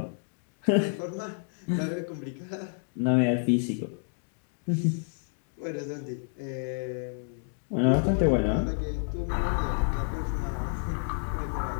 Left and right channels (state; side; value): silent; right; 58 dB below the other